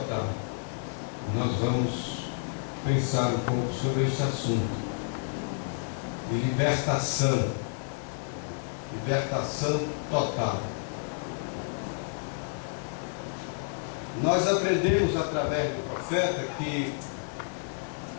Nós vamos pensar um pouco sobre esse assunto de libertação total. Nós aprendemos através do profeta que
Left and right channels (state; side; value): silent; right; digital silence